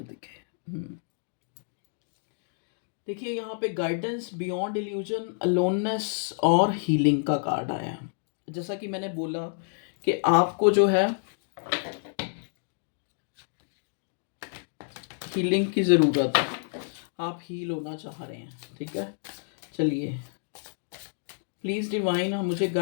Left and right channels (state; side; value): silent; right; digital silence